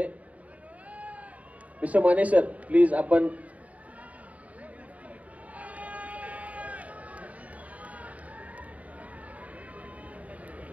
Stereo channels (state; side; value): late; left; 0.069 ms